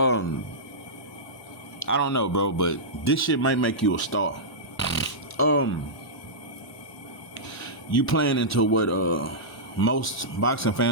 don't know, bro, but this shit might make you a star. You playing into what most boxing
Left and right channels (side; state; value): both; normal; correlation -0.13